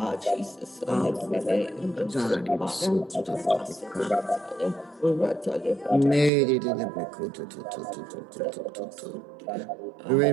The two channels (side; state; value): left; drops out; at 6.3 s